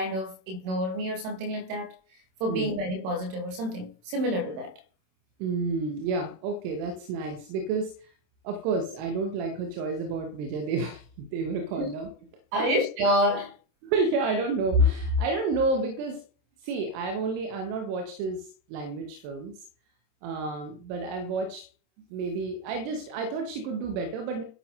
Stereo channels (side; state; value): left; late; 27 ms